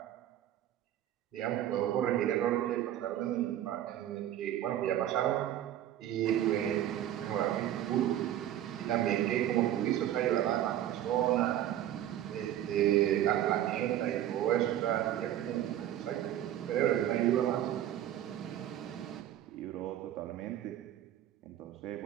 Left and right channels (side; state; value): left; quieter; 11.9 dB